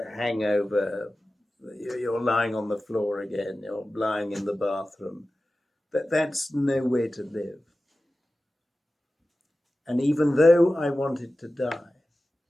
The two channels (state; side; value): normal; both; correlation 0.95